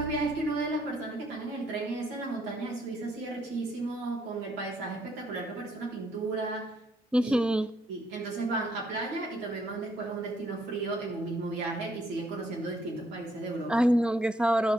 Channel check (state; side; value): normal; both; correlation 0.70